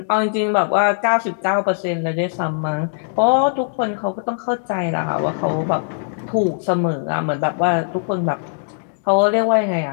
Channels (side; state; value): right; silent; digital silence